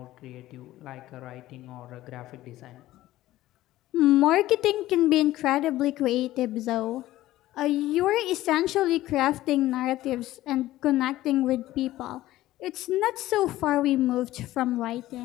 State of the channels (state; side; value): quieter; right; 15.5 dB